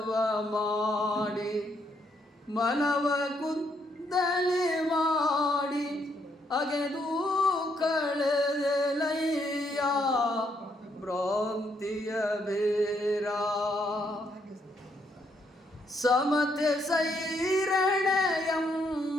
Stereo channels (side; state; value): both; normal; correlation 0.74